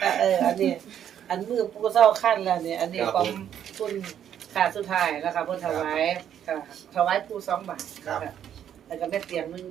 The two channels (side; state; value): left; quieter; 9.7 dB